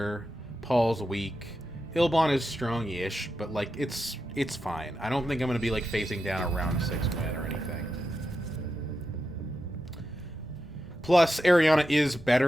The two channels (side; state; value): both; normal; correlation 0.88